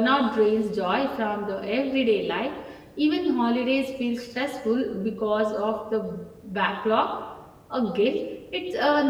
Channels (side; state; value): both; identical; correlation 1.00